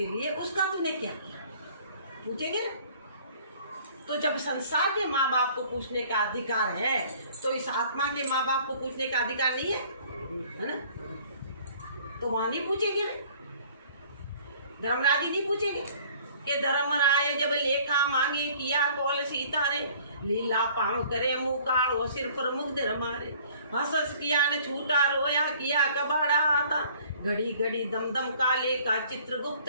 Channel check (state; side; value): inverted; both; correlation -0.54